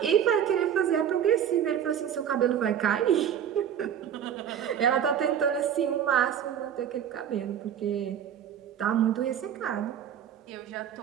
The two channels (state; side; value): quieter; left; 9.1 dB